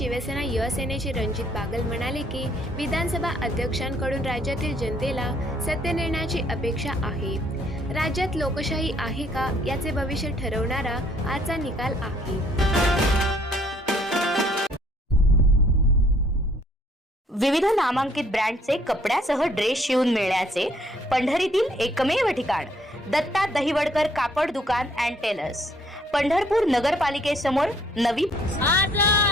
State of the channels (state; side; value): normal; both; correlation 0.64